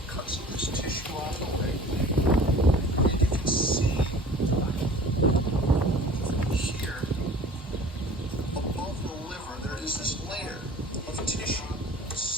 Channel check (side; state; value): both; normal; correlation 0.45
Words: cut some of this tissue off the way. And you can see here, above the liver, there is this layer of tissue